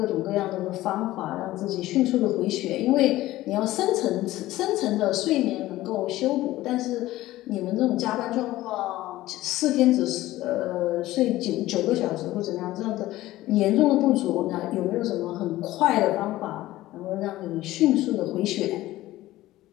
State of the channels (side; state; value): right; quieter; 16.2 dB